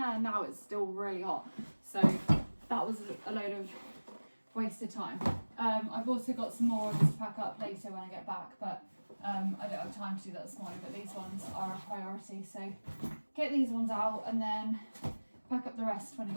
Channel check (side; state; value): both; inverted; correlation -1.00